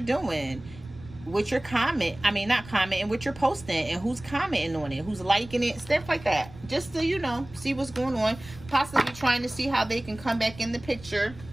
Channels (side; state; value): right; noise; rumble, 18 dB below the sound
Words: doing, what you're not commenting, what you're posting, and who's commenting on it, who's liking it, stuff like that. Just to, you know, see what's going on. Possibly trying to see how they can come back in the picture.